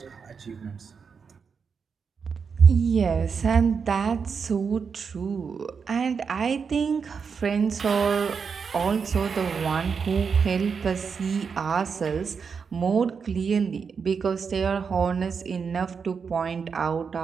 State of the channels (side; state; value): left; quieter; 5.9 dB